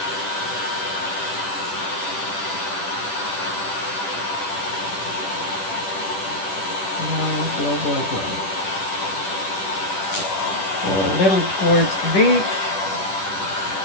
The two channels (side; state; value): right; late; 10 ms